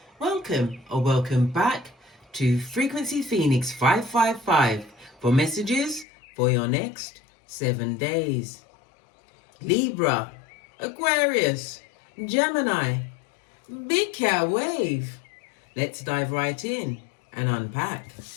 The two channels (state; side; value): drops out; right; at 6.1 s